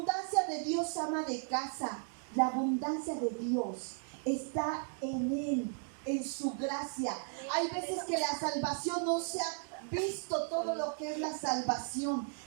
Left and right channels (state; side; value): silent; left; 54 dB below the other